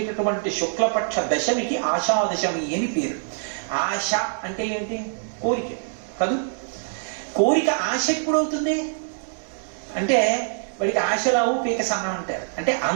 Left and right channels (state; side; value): silent; left; 62 dB below the other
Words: శుక్లపక్ష దశమికి ఆషాదశమి అని పేరు. ఆశ అంటే ఏంటి? కోరిక కాదు. కోరిక ఆశ ఎప్పుడవుతుంది అంటే వాడికి ఆశలావు పీక సన్నం అంటారు. అంటే